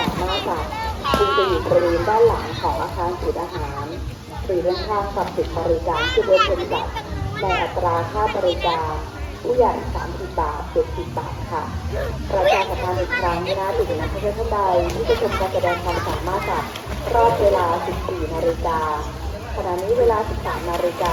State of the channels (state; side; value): identical; both; correlation 1.00